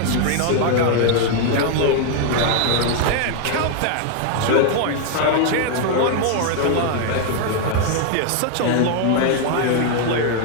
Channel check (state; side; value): different; both; correlation 0.00